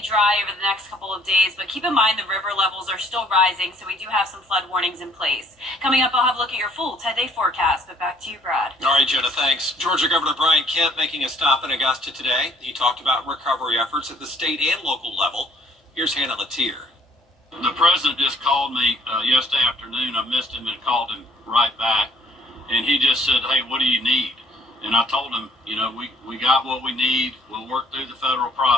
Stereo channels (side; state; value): both; normal; correlation 0.61